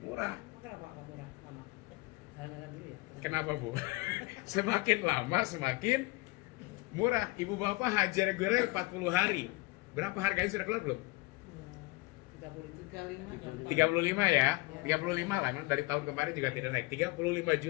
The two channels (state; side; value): quieter; right; 23.0 dB